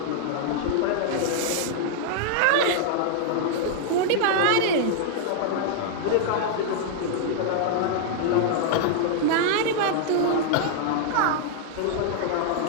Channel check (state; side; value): different; both; correlation -0.01